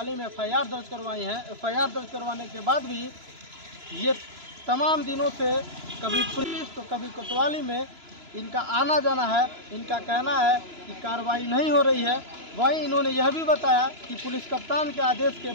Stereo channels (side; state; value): left; late; 2.9 ms